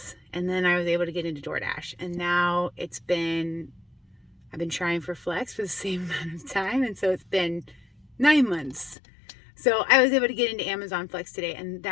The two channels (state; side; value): drops out; right; at 9.0 s